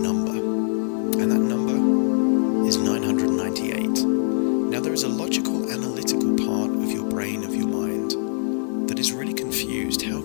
And that number is 998. Now there is a logical, analytical part of your brain, of your mind, that is really confused. How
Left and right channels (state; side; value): silent; right; digital silence